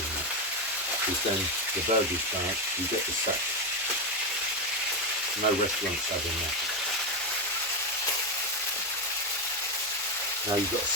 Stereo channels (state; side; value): normal; both; correlation 0.10